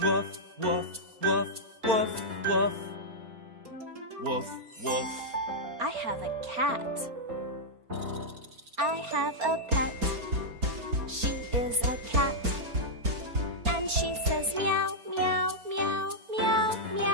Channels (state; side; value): late; left; 4.4 ms